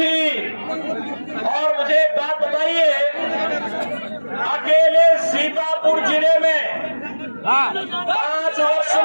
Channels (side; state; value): both; inverted; correlation -1.00